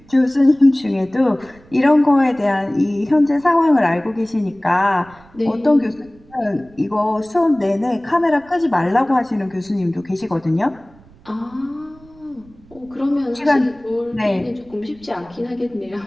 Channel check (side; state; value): right; noise; rumble, 26 dB below the sound